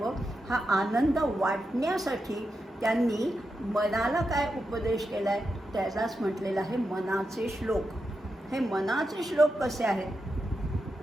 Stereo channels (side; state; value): both; normal; correlation 0.87